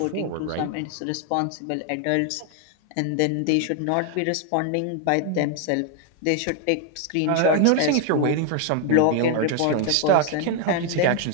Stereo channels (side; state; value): both; different; correlation 0.00